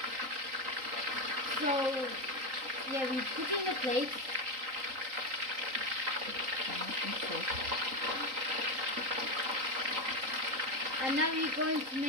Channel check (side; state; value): left; late; 3.8 ms